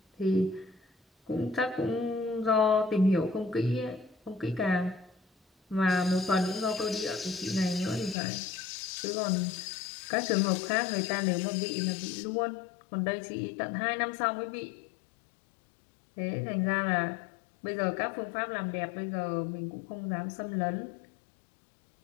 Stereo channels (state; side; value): drops out; right; at 8.2 s